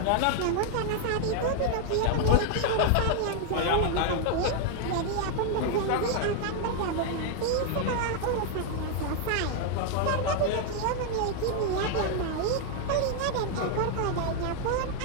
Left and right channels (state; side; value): different; both; correlation 0.00